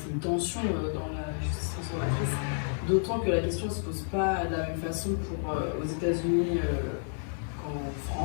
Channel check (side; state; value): right; silent; digital silence